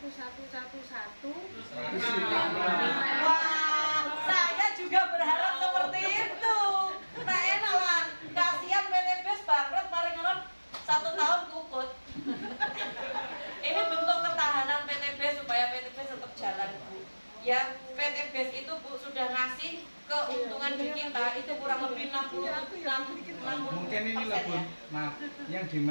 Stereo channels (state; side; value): inverted; both; correlation -1.00